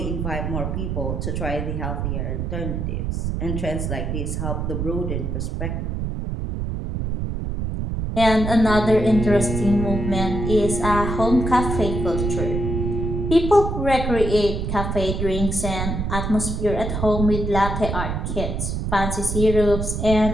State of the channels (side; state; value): right; noise; rumble, 2 dB below the sound